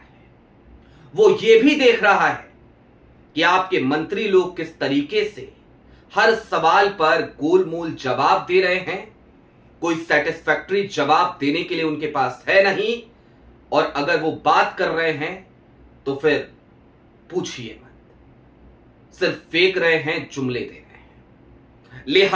वो ये भी देख रहा है कि आपके मंत्री लोग किस तरीके से हर सवाल पर गोलमोल जवाब दे रहे हैं। कोई सेटिस्फैक्टरी जवाब देने के लिए उनके पास है नहीं, और अगर वो बात कर रहे हैं तो फिर पूछिए मत, सिर्फ फेंक रहे हैं, जुमले दे रहे हैं।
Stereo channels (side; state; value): both; identical; correlation 1.00